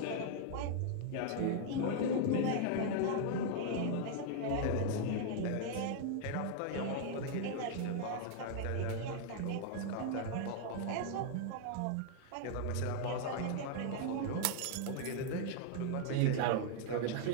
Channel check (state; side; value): different; both; correlation -0.01